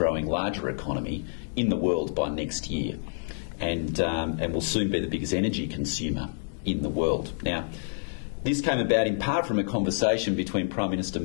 larger economy in the world by next year, and will soon be the biggest energy consumer in the world. Now, this came about in part from a conversation between Prime Minister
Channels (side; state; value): right; silent; digital silence